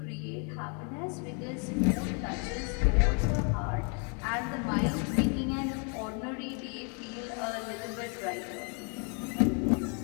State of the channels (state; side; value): quieter; right; 37.9 dB